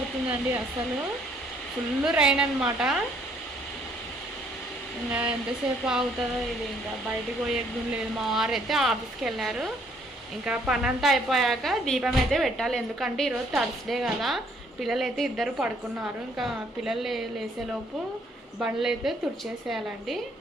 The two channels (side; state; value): both; normal; correlation 0.65